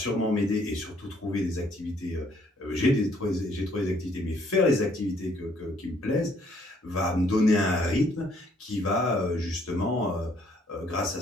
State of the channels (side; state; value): both; normal; correlation 0.65